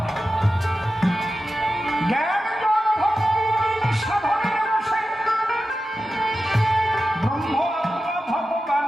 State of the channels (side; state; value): both; normal; correlation 0.92